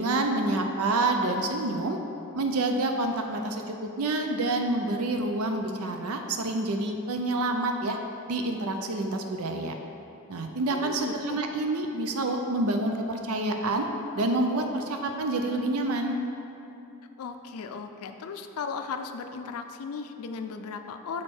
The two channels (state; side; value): normal; both; correlation 0.21